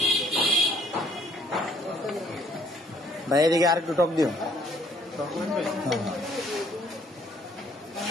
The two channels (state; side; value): normal; both; correlation 0.63